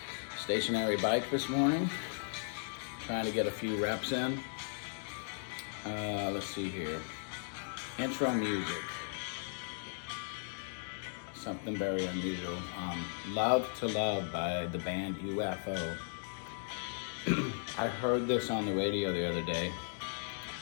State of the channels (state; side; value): silent; right; digital silence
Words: stationary bike this morning, trying to get a few reps in. Let's see here. Intro music. Something very unusual. Love to Love by the band UFO. I heard this on the radio the other day,